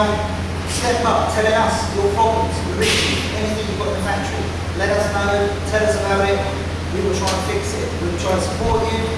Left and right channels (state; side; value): identical; both; correlation 1.00